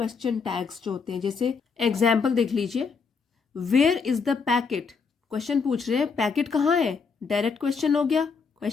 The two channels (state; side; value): quieter; right; 5.3 dB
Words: टैग्स जो होते हैं, जैसे एग्जाम्पल देख लीजिए, where is the packet, question पूछ रहे हैं, पैकेट कहाँ है, डायरेक्ट क्वेश्चन हो गया,